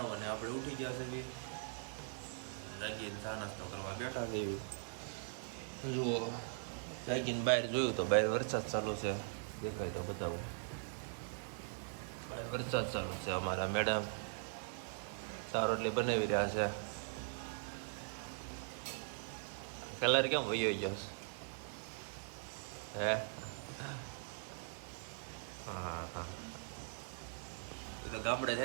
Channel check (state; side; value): silent; left; digital silence